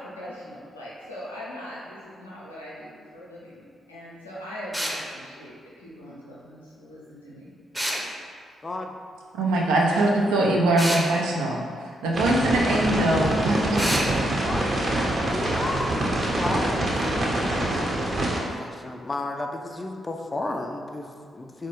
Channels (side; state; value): both; normal; correlation 0.78